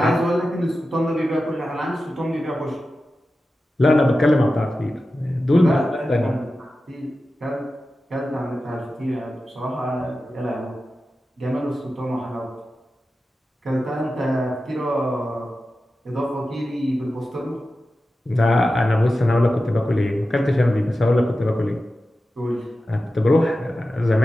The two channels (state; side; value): normal; both; correlation 0.93